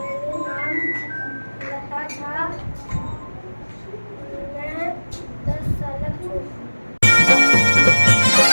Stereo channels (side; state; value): both; inverted; correlation -1.00